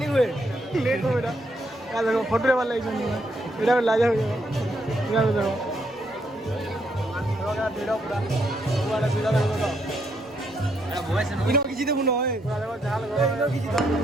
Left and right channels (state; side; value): normal; both; correlation 0.75